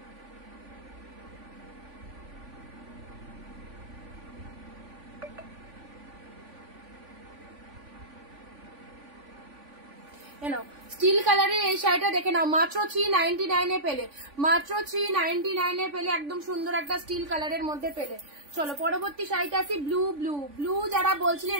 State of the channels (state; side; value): late; left; 3.5 ms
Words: স্টিল কালারের এই শাড়িটা দেখে নাও, মাত্র 399 এ পেলে, মাত্র 399 এ পেলে, একদম সুন্দর একটা স্টিল কালারের মধ্যে পেলে। চলো পরবর্তী শাড়িটা আসি ব্লু, ব্লু ব্লু যারা বলছিলেন